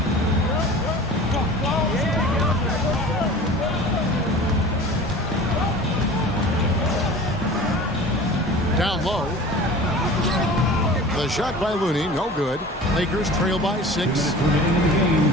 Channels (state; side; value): normal; both; correlation 0.40